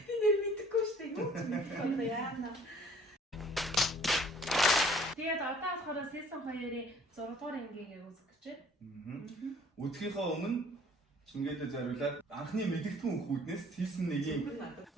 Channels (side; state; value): both; normal; correlation 0.54